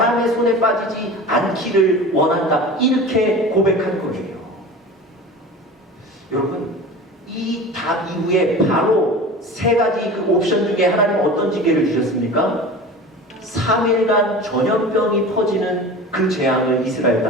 손에 빠지지 않기를 원한다. 이렇게 고백한 거예요. 여러분, 이 답 이후에 바로 세 가지 그 옵션 중에 하나님 어떤 징계를 주셨습니까? 3일간 전염병이 퍼지는 그 재앙을 이스라엘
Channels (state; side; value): normal; both; correlation 0.35